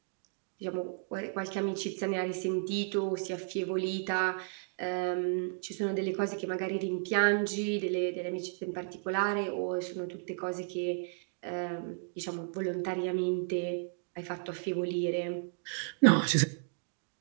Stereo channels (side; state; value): left; silent; digital silence